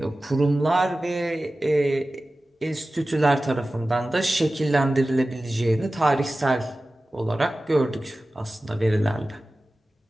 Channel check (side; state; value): both; normal; correlation 0.96